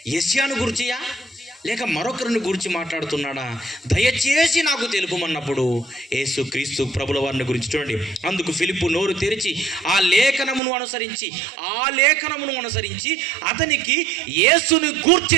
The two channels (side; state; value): left; drops out; at 10.6 s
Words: యెషయాను గుర్చియా లేక మరొకరిని గురించి మాట్లాడుతున్నాడా? దయచేసి నాకు తెలుపమన్నప్పుడు యేసు క్రీస్తు ప్రభుల వారిని గురించి చూడండి. అందుకు ఫిలిప్పు నోరు తెరిచి ఆ లేఖనమును అనుసరించి అతనికి యేసుని